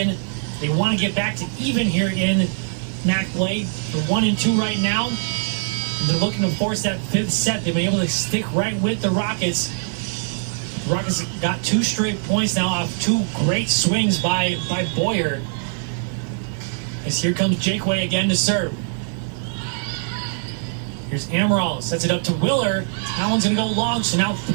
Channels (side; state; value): left; silent; 56 dB below the other